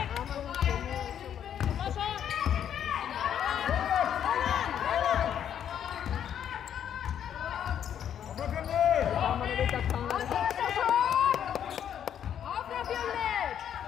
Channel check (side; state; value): right; quieter; 9.4 dB